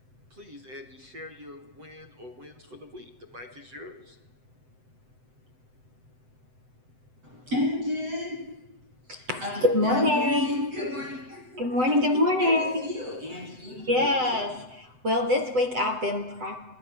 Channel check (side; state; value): left; late; 7.9 ms